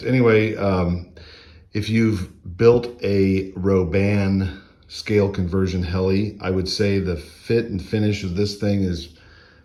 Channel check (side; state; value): both; identical; correlation 1.00